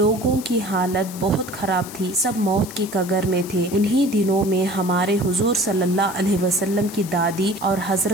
کی حالت بہت خراب تھی۔ سب موت کی کگار میں تھے۔ انہی دنوں میں ہمارے حضور صلی اللہ علیہ وسلم کی دادی اور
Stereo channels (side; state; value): left; noise; hiss, 14 dB below the sound